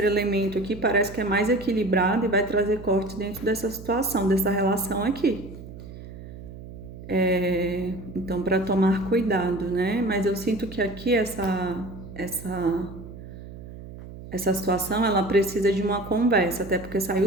elemento aqui parece que é mais equilibrado e vai trazer corte dentro dessa situação, dessa relação aqui. Então, para tomar cuidado, né? Mas eu sinto que aqui essa situação ela precisa de uma conversa, até porque saiu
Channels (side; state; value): right; noise; hum, 14 dB below the sound